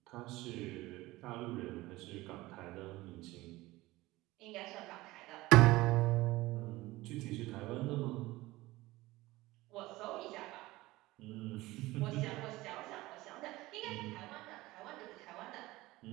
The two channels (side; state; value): left; quieter; 19.1 dB